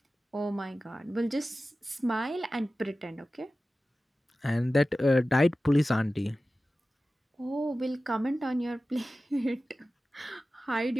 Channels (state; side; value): normal; both; correlation 0.95